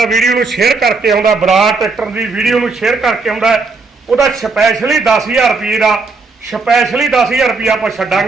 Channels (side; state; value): left; quieter; 4.1 dB